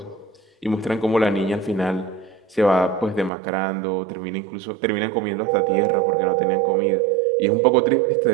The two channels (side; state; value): left; drops out; at 3.3 s